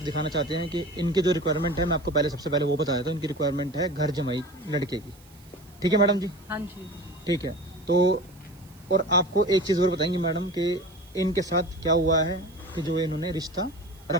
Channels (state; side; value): noise; right; hiss, 27 dB below the sound